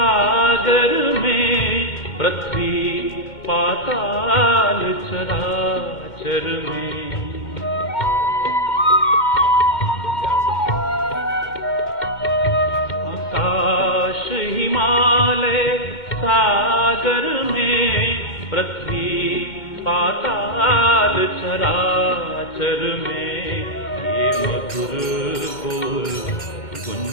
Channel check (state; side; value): late; right; 2.1 ms